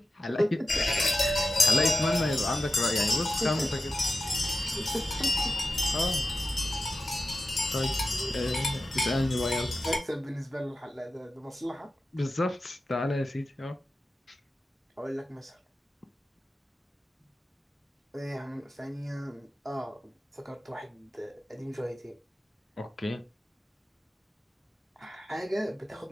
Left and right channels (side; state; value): both; normal; correlation 0.93